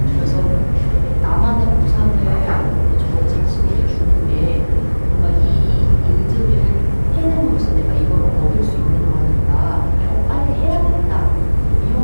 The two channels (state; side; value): inverted; both; correlation -1.00